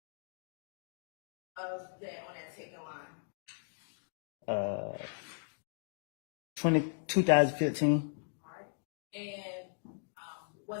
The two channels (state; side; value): silent; right; digital silence